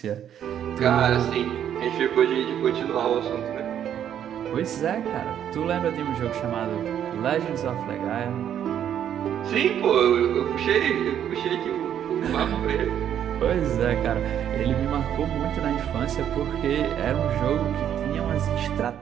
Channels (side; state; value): left; quieter; 9.8 dB